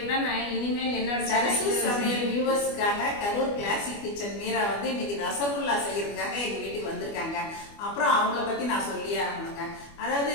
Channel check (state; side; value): late; right; 25 ms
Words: தான் நான் இனிமேல் என்னோட சரசு சமையல் வியூவர்ஸ்க்காக கரூர் கிளாசிக் கிச்சன் மீரா வந்து இன்னைக்கு ரசகுல்லா செய்யறதுக்காக எங்க வீட்டுக்கு வந்திருக்காங்க. அப்புறம் அவங்கள பத்தி நான் சொல்லியே ஆகணுங்க.